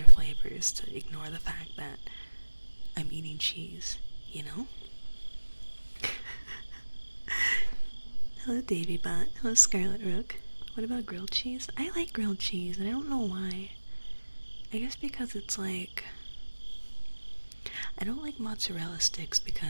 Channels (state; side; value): inverted; both; correlation -1.00